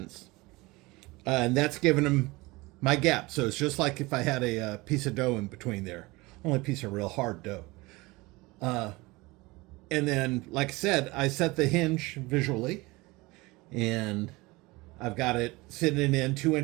and that's giving them my gap. So it's just like if I had a piece of dough in between there, only a piece of real hard dough. And then, like I said, I set the hinge visually, and I've got it sitting in 2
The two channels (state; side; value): quieter; left; 22.5 dB